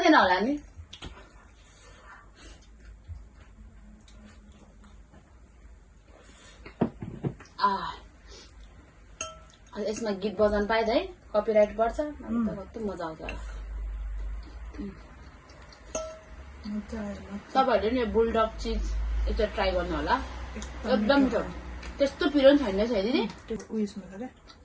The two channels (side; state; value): both; identical; correlation 1.00